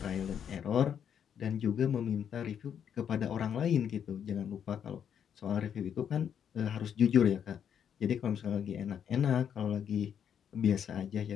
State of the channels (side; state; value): right; quieter; 8.5 dB